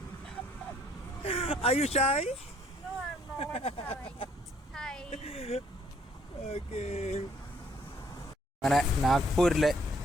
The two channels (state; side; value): normal; both; correlation 0.64